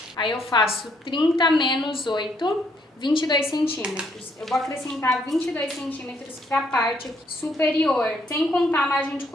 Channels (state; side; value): normal; both; correlation 0.70